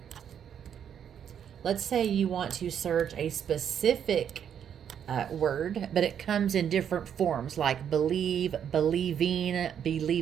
Let's say you want to search a specific word, but it comes in different forms, like believe, believing,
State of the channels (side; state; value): left; quieter; 8.7 dB